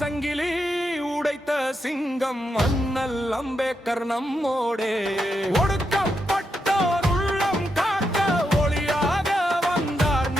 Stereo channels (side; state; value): both; normal; correlation 0.84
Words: சங்கிலி உடைத்த சிங்கம் அண்ணல் அம்பேத்கர் நம்மோடே ஒடுக்கப்பட்டோர் உள்ளம் காக்க ஒளியாக வந்தார்